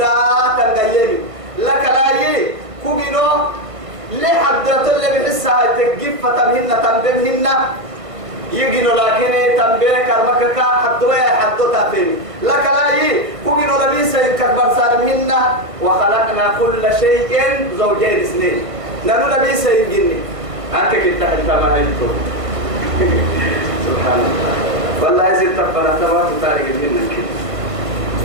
تنقيني لك لا كوجنو ليه حدث اللي بحسها تجيب فتمهن تنبمهن يجينو لكن تنبيه كرمك حدوا حدوا تفهم لك لا كوجنو لبيس ينكبر سالمهن وخلقنا كل شيء زوجين اثنين نانو لبيس يجيني أنت كنت حتى ما هيتو سبحان الله والله يزيد تبنا تبارك تاريخ منك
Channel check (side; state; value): left; late; 1.5 ms